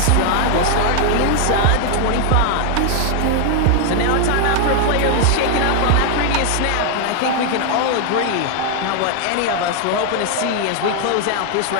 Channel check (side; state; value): both; different; correlation 0.00